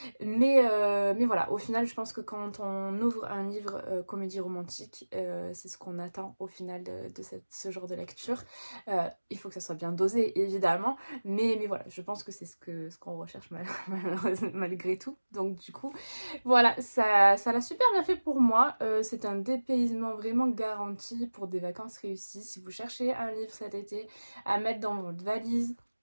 mais voilà, au final, je pense que quand on ouvre un livre comédie romantique, c'est ce qu'on attend au final de ce genre de lecture. Il faut que ça soit bien dosé, évidemment, mais voilà, je pense que c'est ce qu'on recherche malgré tout. Donc du coup, voilà, ça l'a super bien fait pour moi. C'est un dépaysement vraiment garanti pour des vacances réussies. Si vous cherchez un livre cet été à mettre dans votre valise,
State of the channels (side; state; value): both; inverted; correlation -1.00